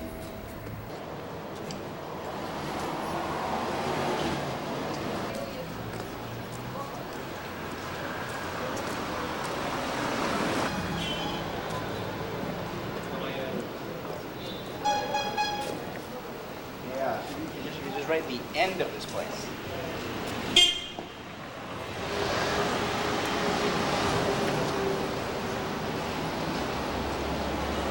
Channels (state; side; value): identical; both; correlation 1.00